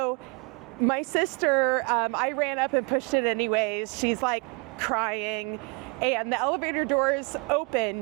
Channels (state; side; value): quieter; left; 31.0 dB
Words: my sister, I ran up and pushed it anyways. She's like crying, and the elevator doors open.